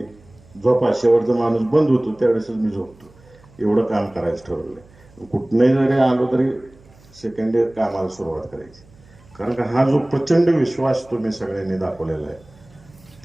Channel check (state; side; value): noise; right; hum, 26 dB below the sound